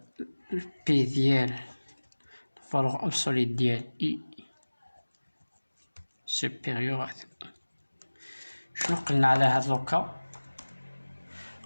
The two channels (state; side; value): inverted; both; correlation -1.00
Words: بي ديال الفالور ابسوليت ديال اي سوبيريور. شنو قلنا على هاد لوكا؟